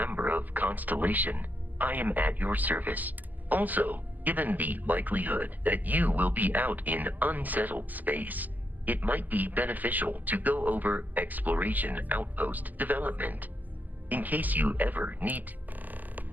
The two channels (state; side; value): late; left; 0.083 ms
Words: of Constellation, I am at your service. Also, given the likelihood that you will be out in unsettled space, it might be beneficial to go over exploration outpost development, in case you ever need.